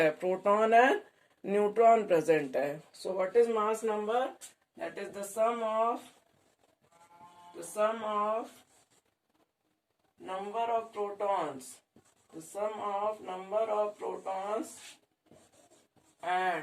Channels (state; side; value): identical; both; correlation 1.00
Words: प्रोटॉन एंड न्यूट्रॉन प्रेजेंट है. So what is mass number? That is the sum of number of protons, the sum of number of protons